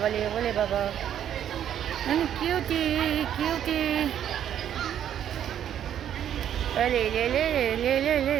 বলে বাবা, কিউটি কিউটি। লে লে লে লে লে লে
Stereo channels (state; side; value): quieter; left; 10.1 dB